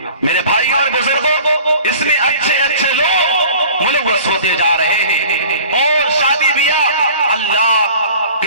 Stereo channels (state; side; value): inverted; both; correlation -0.44